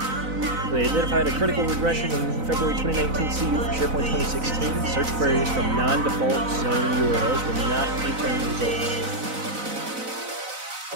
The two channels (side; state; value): left; late; 4.0 ms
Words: They identified a critical regression in February 2019 CU for SharePoint 2016. Search queries from non-default zone URLs will not return results.